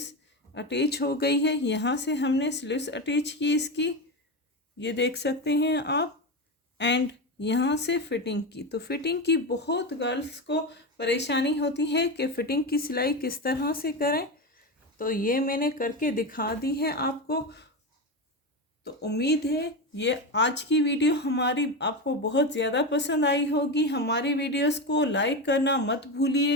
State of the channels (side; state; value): both; normal; correlation 0.17